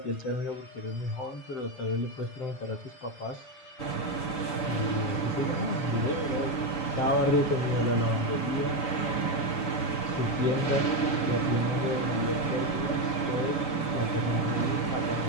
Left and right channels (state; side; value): late; right; 7.0 ms